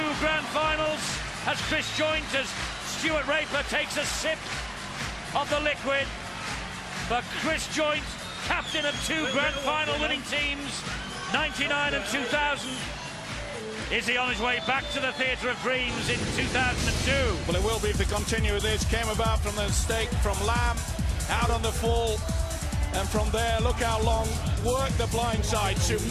grand finals as Chris Joint, as Stuart Raper takes a sip of the liquid. But Chris Joint, captain of 2 grand final winning teams, 99 and 2000. Is he on his way back to the Theatre of Dreams in 2002? Well, it will be if they continue this. Came about from the mistake from Lamb, out on the full. And from there, look how Long worked the blind side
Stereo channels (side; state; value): both; identical; correlation 1.00